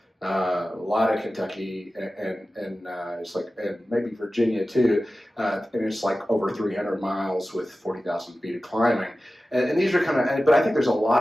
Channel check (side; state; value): both; normal; correlation 0.95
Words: a lot of Kentucky and it's like, and maybe Virginia too, and it's like over 300 miles with 40,000 feet of climbing. And these are kind of, but I think there's a